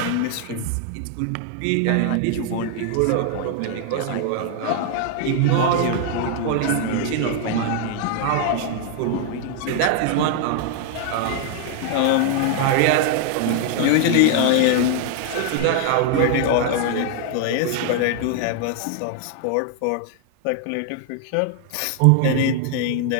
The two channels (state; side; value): different; both; correlation 0.00